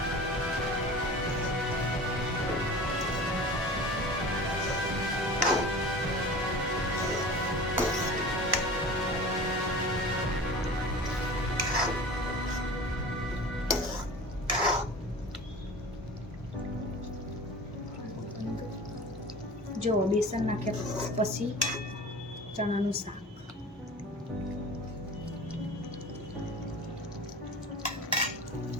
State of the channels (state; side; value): normal; both; correlation 0.38